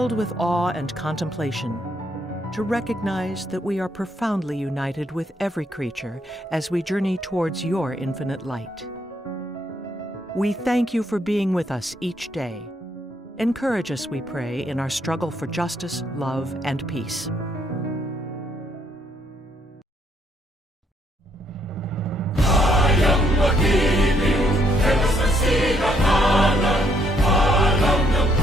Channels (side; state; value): both; normal; correlation 0.71